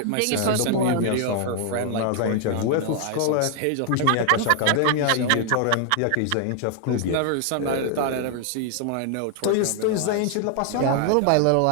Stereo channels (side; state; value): both; different; correlation 0.00